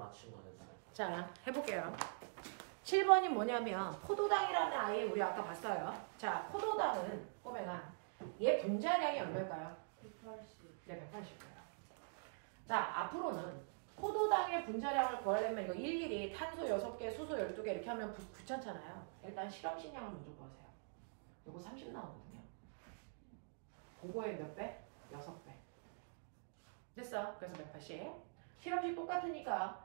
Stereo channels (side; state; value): left; silent; digital silence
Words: 거였어요. 자, 해볼게요. 7번이 뭐냐면 포도당이라는 아이 우리 아까 봤어요. 자, 포도당은 보면 얘 분자량이 얼마일까요? 180. 네, 180이에요. 자, 앞으로는 포도당의 분자량을 구하려면 이거 일일이 탄소 6개, 수소 12개 이렇게 하면 귀찮잖아요. 일단 실험식량을 먼저 구하세요. 요거 30 나오거든요. 그거의 몇 배? 6배. 됐어. 그래서 180. 실험식